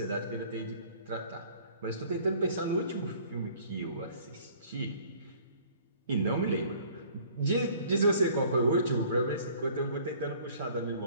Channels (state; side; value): inverted; both; correlation -0.54